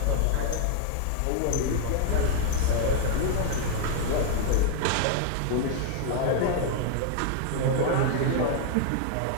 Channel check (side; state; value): both; different; correlation 0.00